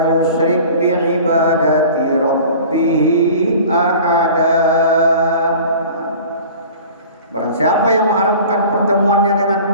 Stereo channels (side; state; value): both; inverted; correlation -0.43